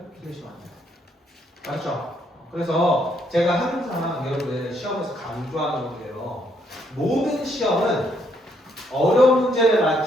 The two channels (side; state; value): both; normal; correlation 0.72